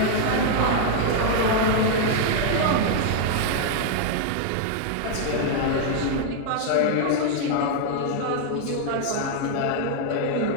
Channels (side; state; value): both; different; correlation 0.00